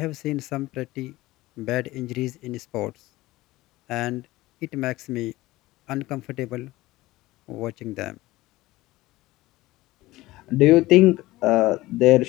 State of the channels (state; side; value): quieter; right; 18.3 dB